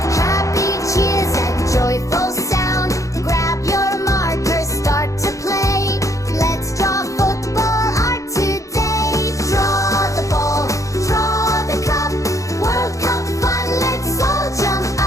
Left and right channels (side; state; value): right; late; 0.15 ms